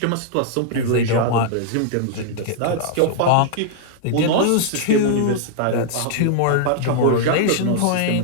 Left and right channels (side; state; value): both; different; correlation -0.01